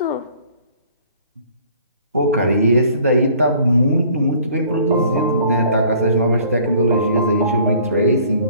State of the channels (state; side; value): inverted; both; correlation -0.55